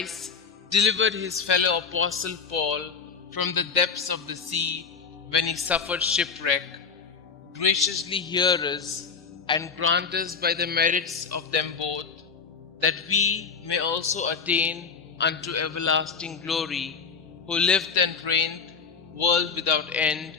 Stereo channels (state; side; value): quieter; right; 5.7 dB